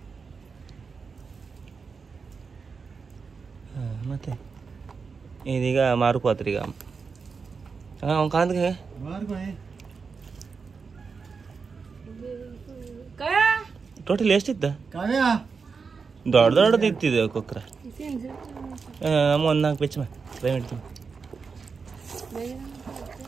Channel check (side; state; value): left; quieter; 5.1 dB